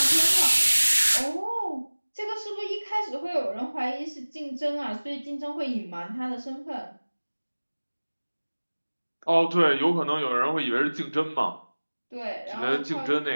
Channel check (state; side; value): inverted; both; correlation -1.00